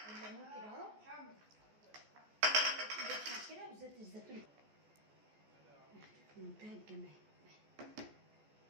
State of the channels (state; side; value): late; left; 14 ms